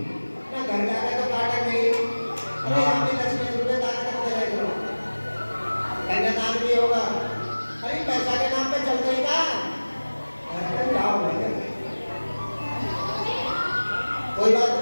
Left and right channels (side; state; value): both; inverted; correlation -1.00